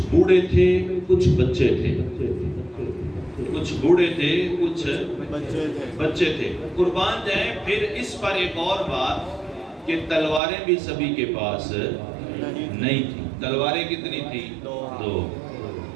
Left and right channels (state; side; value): drops out; left; at 10.4 s